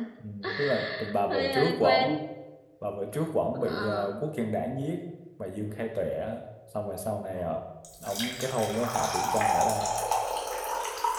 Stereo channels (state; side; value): identical; both; correlation 1.00